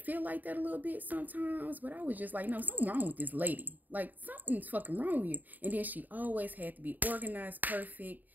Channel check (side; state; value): left; late; 0.085 ms